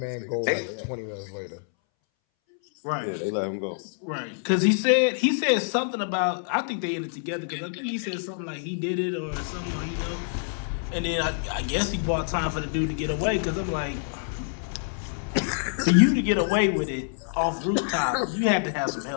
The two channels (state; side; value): silent; right; 60 dB below the other